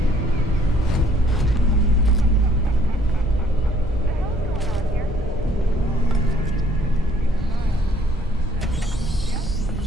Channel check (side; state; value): both; normal; correlation 0.62